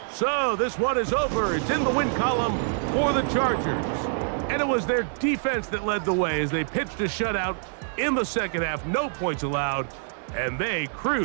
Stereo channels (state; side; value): silent; left; digital silence